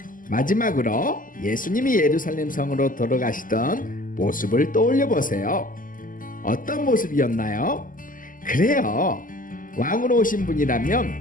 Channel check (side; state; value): right; late; 0.39 ms